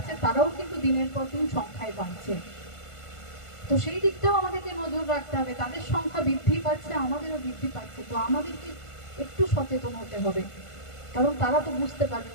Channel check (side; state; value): right; late; 1.5 ms